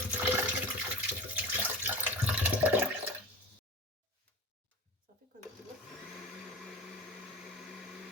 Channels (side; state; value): both; normal; correlation 0.33